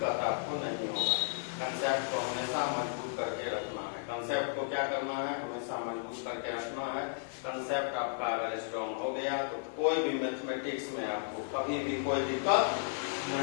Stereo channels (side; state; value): right; silent; digital silence